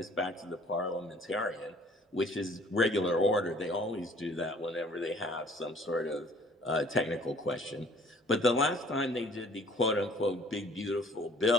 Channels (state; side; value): normal; both; correlation 0.55